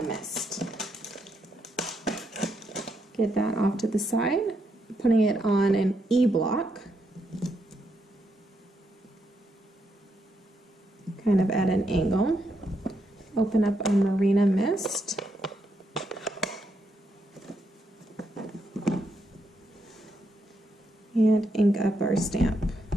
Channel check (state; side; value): normal; both; correlation 0.80